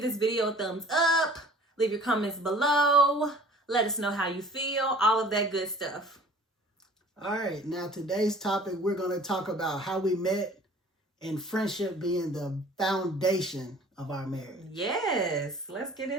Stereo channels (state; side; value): normal; both; correlation 0.49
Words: this video a thumbs up. Leave your comments below. Let us know how you feel. All of that good stuff. All right. Now, today's topic, we're going to talk about how we met and friendship being the foundation of our marriage. Yes. Let's get